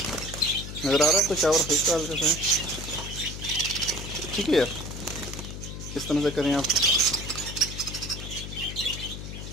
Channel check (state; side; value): noise; left; hum, 9 dB below the sound